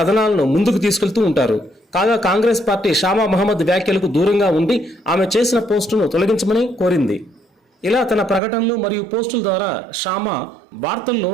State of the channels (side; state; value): left; drops out; at 8.4 s